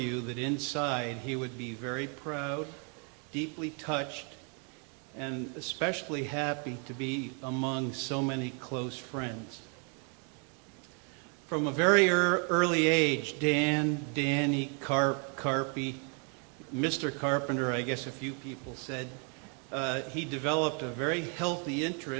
that inside he would be very proud, deeply touched, and especially happy to be among so many close friends. From a very early age, Dan, Danny, Carp, Carpy, Mr. Carpenter, I guess a few people said, he developed a very healthy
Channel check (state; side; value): quieter; left; 38.2 dB